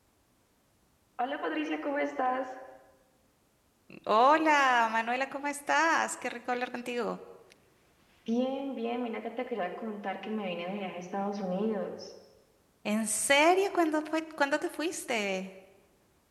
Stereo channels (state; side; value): identical; both; correlation 1.00